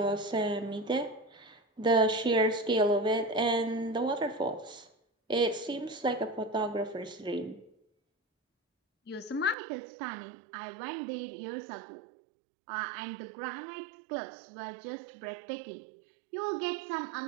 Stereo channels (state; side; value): drops out; left; at 9.6 s